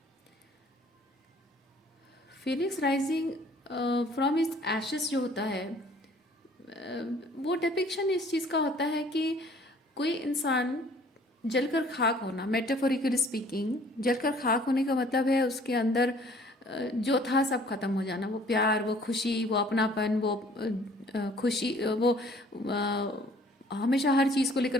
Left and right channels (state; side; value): normal; both; correlation 0.55